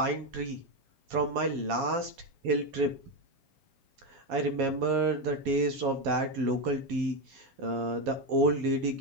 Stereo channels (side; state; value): left; late; 7.3 ms